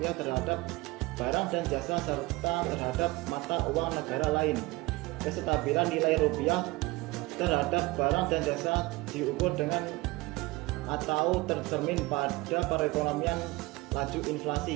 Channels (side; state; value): left; quieter; 21.9 dB